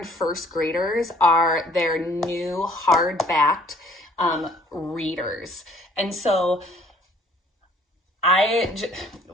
first graders are their new hardbacked readers. And so I've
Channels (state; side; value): normal; both; correlation 0.57